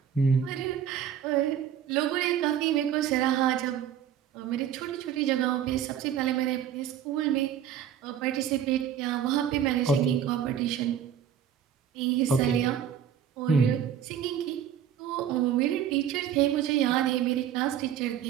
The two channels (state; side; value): quieter; left; 9.2 dB